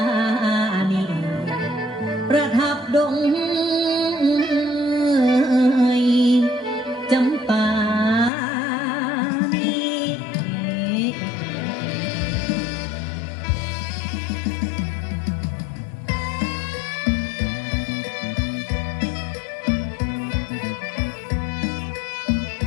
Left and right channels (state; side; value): drops out; right; at 8.3 s